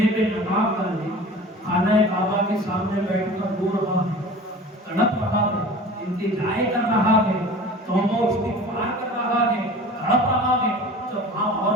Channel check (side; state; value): both; normal; correlation 0.40